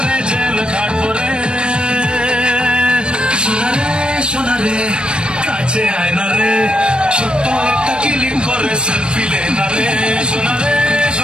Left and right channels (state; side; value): late; left; 0.054 ms